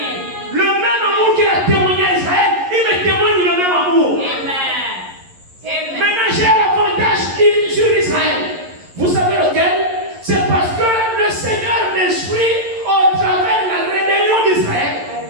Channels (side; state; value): left; late; 11 ms